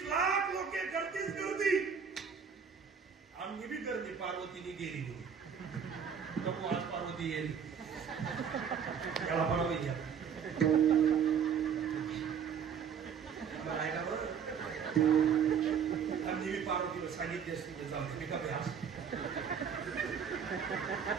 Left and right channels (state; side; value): quieter; left; 7.2 dB